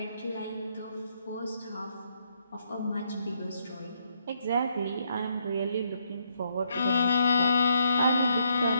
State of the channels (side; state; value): both; inverted; correlation -0.74